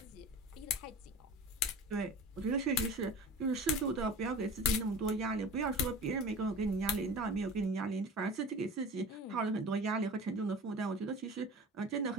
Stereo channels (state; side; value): normal; both; correlation 0.36